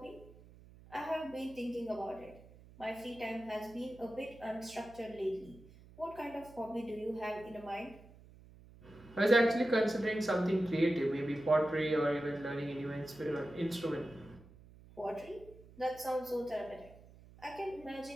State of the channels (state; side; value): noise; right; hum, 21 dB below the sound